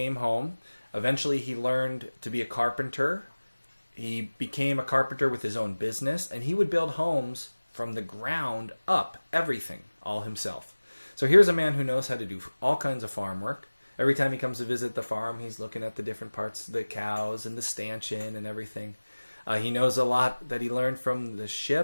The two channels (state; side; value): inverted; both; correlation -1.00